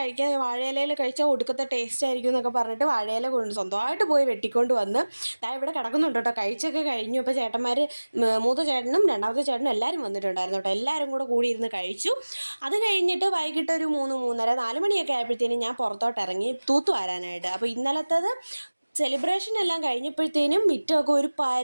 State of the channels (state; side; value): inverted; both; correlation -1.00